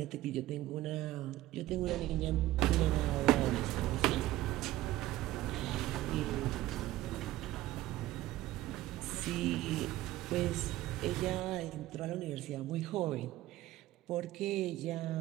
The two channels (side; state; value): left; quieter; 15.8 dB